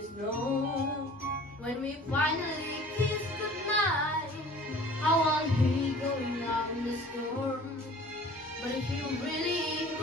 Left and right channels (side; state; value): both; normal; correlation 0.47